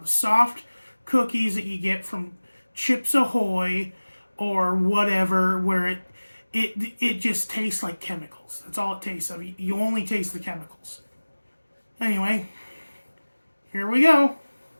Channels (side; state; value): both; inverted; correlation -1.00